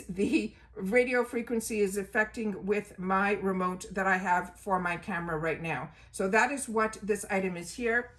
the radio frequency is affecting with my remote that I have for my camera right now. So that is what this item is here.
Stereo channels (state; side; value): identical; both; correlation 1.00